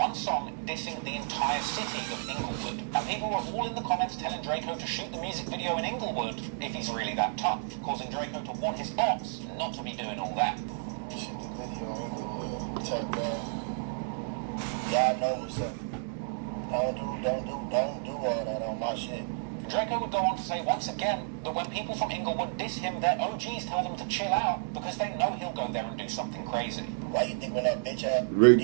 song dissing the entire city of Inglewood. And people were all in the comments telling Draco to shoot the music video in Inglewood if he's really that tough, causing Draco to warn his ops not to be doing all that. Shoot the video in Inglewood. Type y'all know what's up. Don't do all that on my shit. Draco would go on to say once again that when people from Inglewood diss him, their OGs tell them to chill out because they know he'll go there and do something crazy. Why you think when that bitch had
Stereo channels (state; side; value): silent; left; digital silence